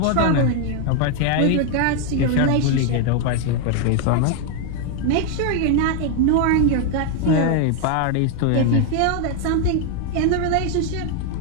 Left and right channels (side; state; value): both; different; correlation 0.00